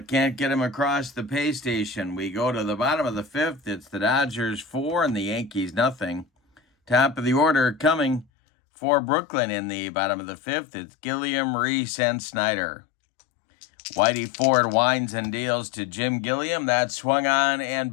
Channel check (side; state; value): right; drops out; at 8.2 s